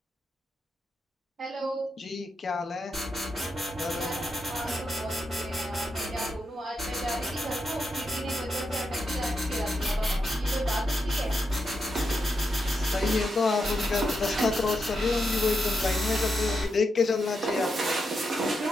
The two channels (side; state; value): both; normal; correlation 0.85